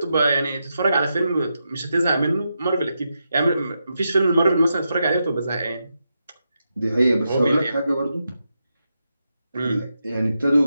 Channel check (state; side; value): inverted; both; correlation -0.86